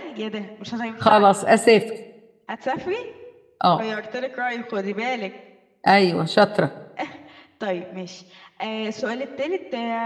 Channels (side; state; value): both; identical; correlation 1.00